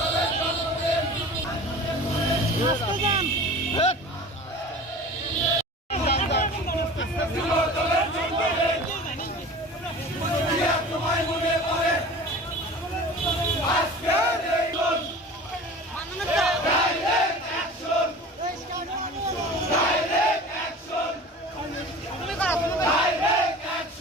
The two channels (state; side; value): normal; both; correlation 0.39